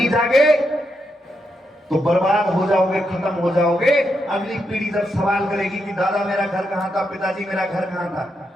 जागे तो बर्बाद हो जाओगे, खत्म हो जाओगे। अगली पीढ़ी जब सवाल करेगी कि दादा मेरा घर कहां था, पिताजी मेरा घर कहां था,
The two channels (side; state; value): both; normal; correlation 0.83